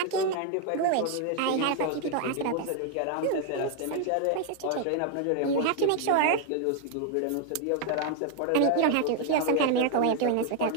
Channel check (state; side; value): different; both; correlation 0.00